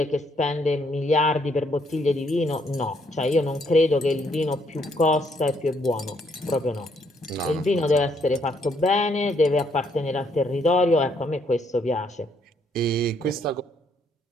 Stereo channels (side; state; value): both; normal; correlation 0.70